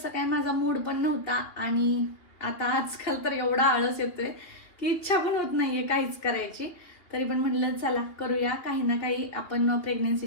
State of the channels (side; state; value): right; late; 2.8 ms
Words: काय माझा मूड पण नव्हता. आणि आता आजकाल तर एवढा आळस येतोय की इच्छा पण होत नाहीये काहीच करायची. तरी पण म्हटलं चला करूया, काही ना काही आपण